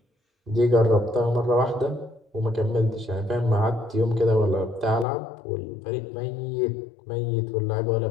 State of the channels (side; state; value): right; drops out; at 5.1 s